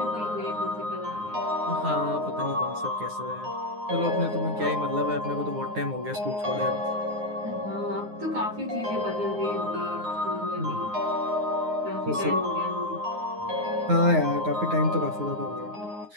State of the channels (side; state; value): left; late; 9.6 ms